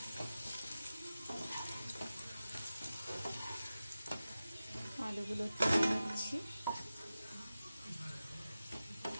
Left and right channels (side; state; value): both; inverted; correlation -0.94